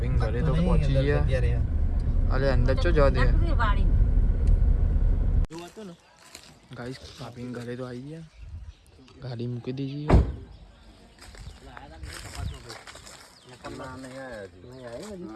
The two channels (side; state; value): both; identical; correlation 1.00